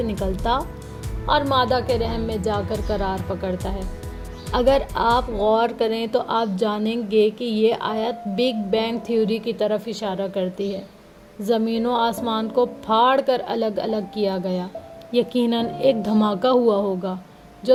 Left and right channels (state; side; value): identical; both; correlation 1.00